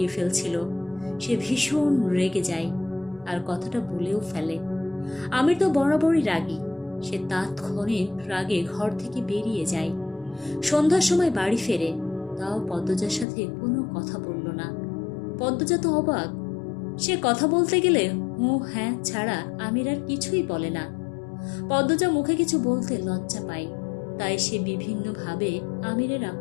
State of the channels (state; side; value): drops out; right; at 13.2 s